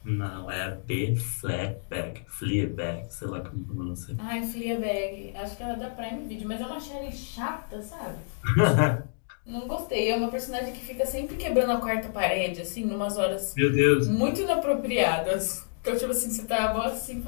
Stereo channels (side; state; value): right; silent; digital silence